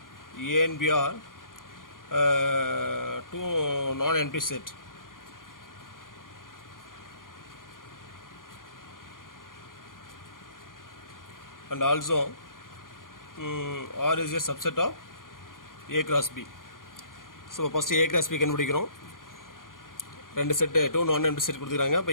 A and B are two non-empty set. And also R is a subset of A cross B. So first A cross B கண்டுபிடிக்கிறோம். ரெண்டு set two non empty set கொடுத்துருக்காங்க.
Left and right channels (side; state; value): right; late; 0.90 ms